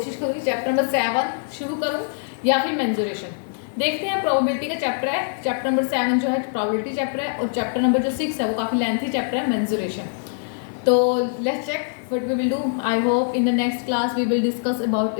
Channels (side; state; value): right; silent; digital silence